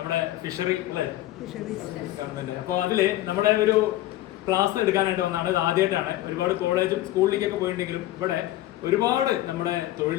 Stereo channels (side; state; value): right; quieter; 15.4 dB